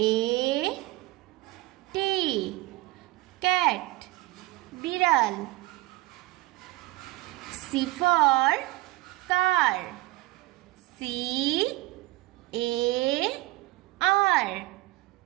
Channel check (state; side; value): quieter; left; 19.7 dB